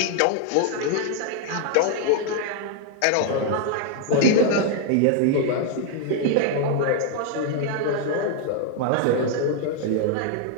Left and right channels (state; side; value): different; both; correlation 0.00